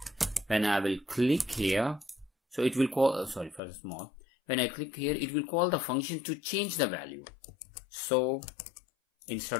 when I will click here, so it will call sorry for the small, when I click here, it will call the function to change the value. So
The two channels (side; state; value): right; drops out; at 3.6 s